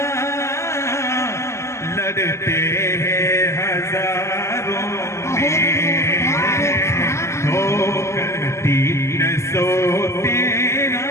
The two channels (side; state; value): right; late; 0.13 ms